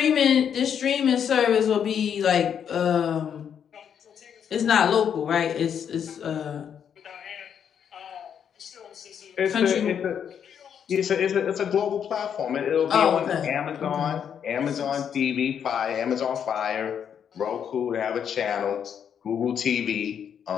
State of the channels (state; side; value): quieter; right; 8.2 dB